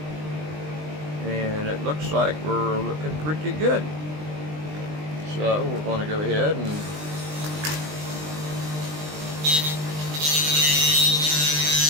And it looks like we're looking pretty good. So we're going to go ahead and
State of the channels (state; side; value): late; left; 20 ms